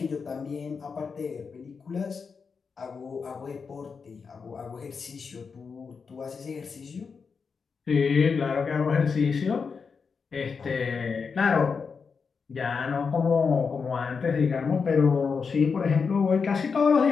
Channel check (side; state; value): right; quieter; 5.4 dB